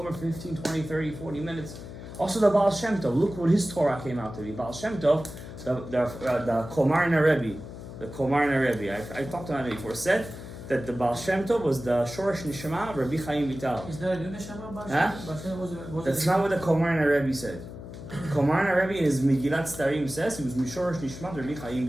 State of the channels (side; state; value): left; noise; hum, 12 dB below the sound